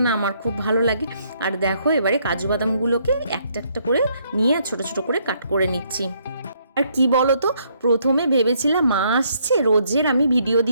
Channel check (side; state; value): both; inverted; correlation -0.70